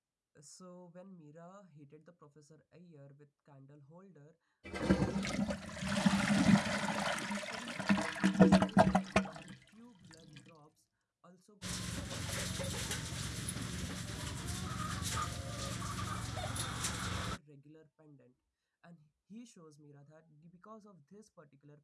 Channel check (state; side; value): identical; both; correlation 1.00